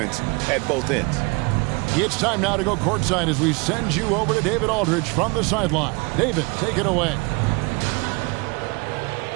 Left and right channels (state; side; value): quieter; left; 28.5 dB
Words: at both ends. It's time now to go courtside as we send you over to David Aldridge from the sideline. David, take it away.